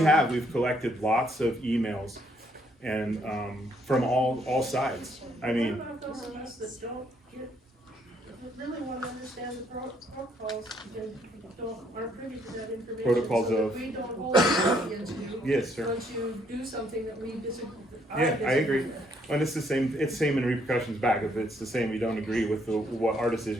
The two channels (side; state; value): both; normal; correlation 0.69